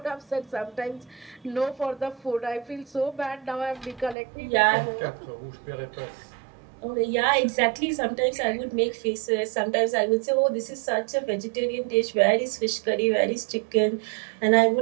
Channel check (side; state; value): left; drops out; at 4.2 s